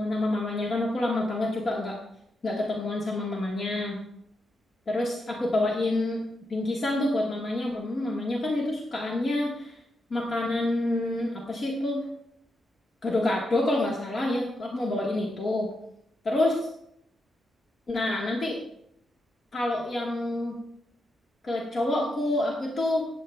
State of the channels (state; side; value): normal; both; correlation 0.84